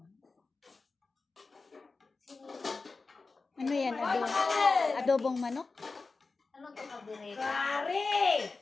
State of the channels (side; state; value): right; quieter; 4.0 dB